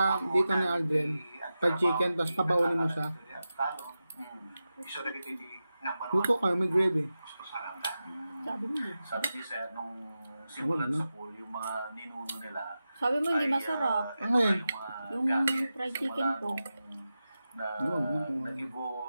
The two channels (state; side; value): inverted; both; correlation -0.92